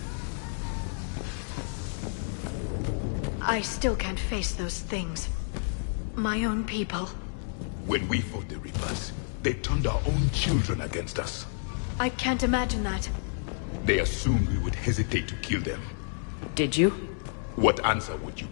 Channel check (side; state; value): right; silent; digital silence